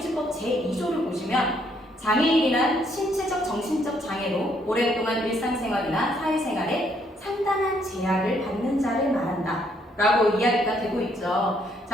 제2조를 보시면 장애인이란 신체적, 정신적 장애로 오랫동안 일상생활이나 사회생활에 상당한 제약을 받는 자를 말한다 라고 이야기가 되고 있죠.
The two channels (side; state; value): both; normal; correlation 0.70